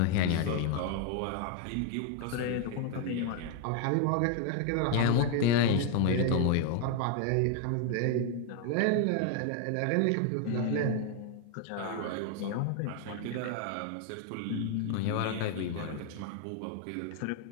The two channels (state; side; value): different; both; correlation 0.00